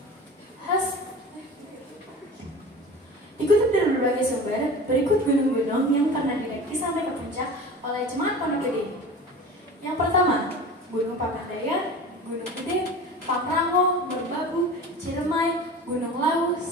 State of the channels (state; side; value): normal; both; correlation 0.36